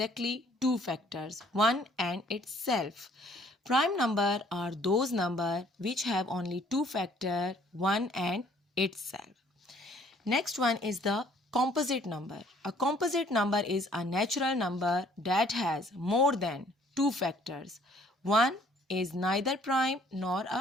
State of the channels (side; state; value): both; normal; correlation 0.60